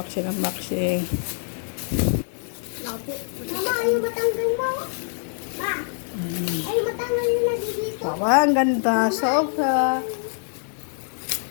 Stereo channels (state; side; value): silent; right; digital silence